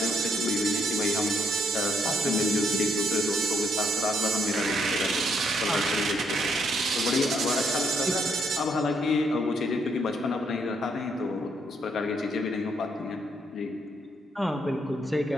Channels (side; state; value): both; normal; correlation 0.72